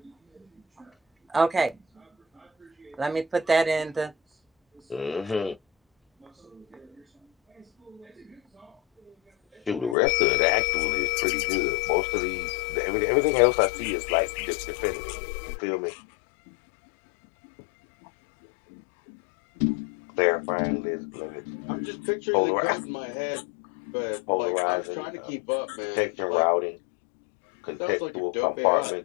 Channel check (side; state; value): right; drops out; at 10.0 s